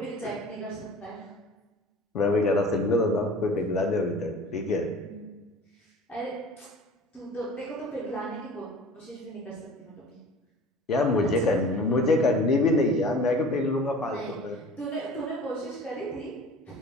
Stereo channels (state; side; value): normal; both; correlation 0.42